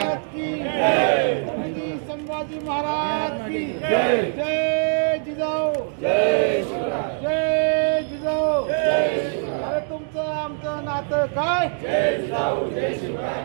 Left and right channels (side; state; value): left; silent; digital silence